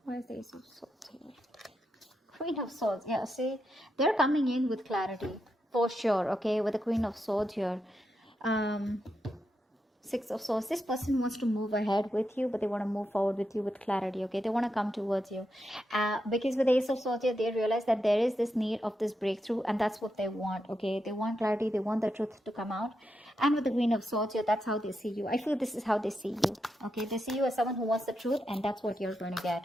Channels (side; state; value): both; normal; correlation 0.85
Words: Why is the Ace of Swords here? Queen of Swords, yeah, see, they're coming in with clarity for sure, okay, with the Queen of Swords here. Six of Swords, this person wants to move ahead with you, but they want to move forward with you with clarity, okay? They want to come towards you, because with the Ace of Swords here, they realize that there is this need of this breakthrough, and that's what they want, okay? They want clarity, they want the truth to come out. And with the Queen of Swords here, that's how they see you. I feel this is how they see you, okay? They see you as someone who wants the truth, and that's what you're going to